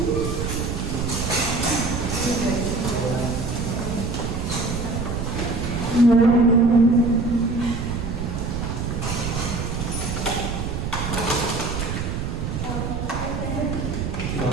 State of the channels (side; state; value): right; noise; rumble, 3 dB below the sound